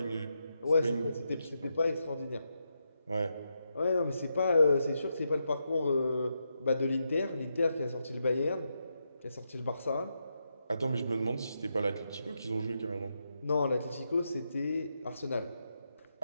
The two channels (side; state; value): both; inverted; correlation -0.84